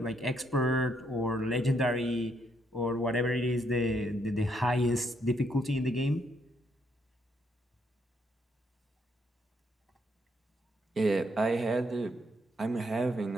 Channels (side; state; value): both; normal; correlation 0.74